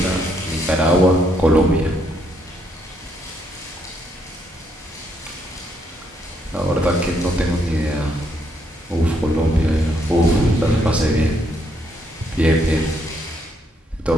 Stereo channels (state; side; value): normal; both; correlation 0.73